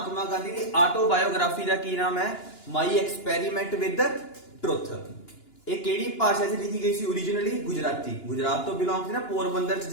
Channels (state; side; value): late; right; 2.9 ms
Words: गांधी की ऑटोबायोग्राफी का की नाम है माई एक्सपेरीमेंट विद ट्रुथ। ये केड़ी भाषा च लिखी गई सी ओरिजिनली? गुजराती। गुजरात तो बिलोंग थी ना, पोरबंदर च